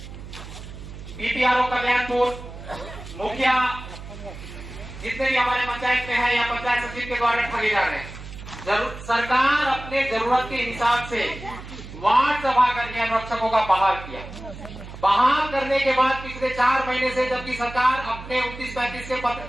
बीपीआरओ कल्याणपुर मुखिया जितने भी हमारे पंचायत में है या पंचायत सचिव के द्वारा ठगे जा रहे हैं। सरकार अपने जरूरत के हिसाब से वार्ड सभा करके अनुरक्षकों का बहाल किया। बहाल करने के बाद पिछले 4 महीने से जबकि सरकार अपने 29-35 के पत्र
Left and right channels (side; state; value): right; noise; hum, 13 dB below the sound